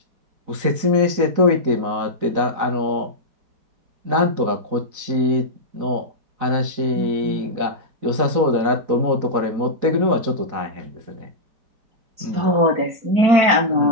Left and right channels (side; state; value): left; late; 4.1 ms